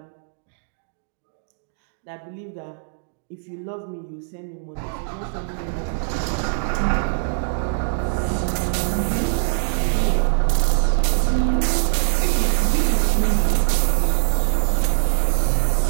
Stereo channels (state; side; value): silent; left; digital silence